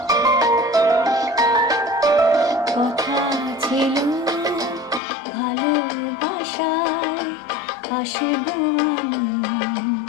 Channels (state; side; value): drops out; right; at 5.0 s